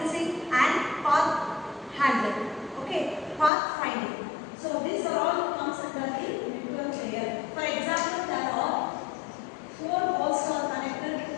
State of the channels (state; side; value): drops out; right; at 3.5 s